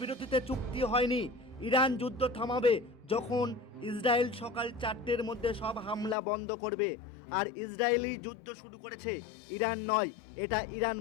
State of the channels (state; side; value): drops out; right; at 6.2 s